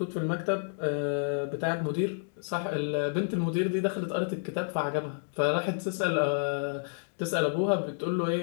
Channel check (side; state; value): right; silent; digital silence